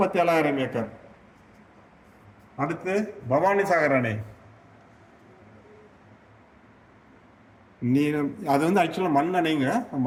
ஏக்கர். அடுத்து பவானி சாகர் அணை. நீளம் அது வந்து ஆக்சுவலாக மண்ணணைங்க.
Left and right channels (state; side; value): identical; both; correlation 1.00